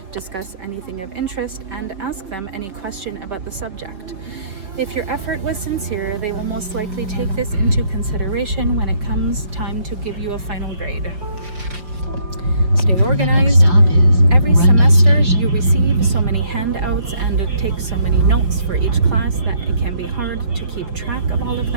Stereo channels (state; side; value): late; left; 5.3 ms